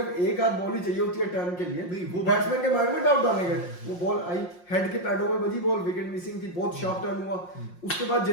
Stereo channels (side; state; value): right; late; 5.6 ms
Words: एक आध बॉल ही चाहिए होती है टर्न के लिए। नहीं, वो बैट्समैन के माइंड में डाउट डालने गए, वो बॉल आई हेड के पैडों में बजी, बॉल विकेट मिसिंग थी, बहुत शार्प टर्न हुआ। उसके बाद